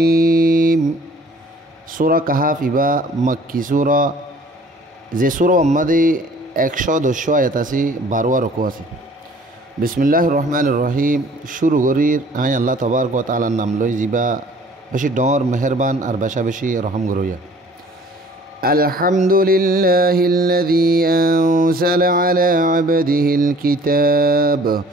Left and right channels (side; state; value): both; normal; correlation 0.53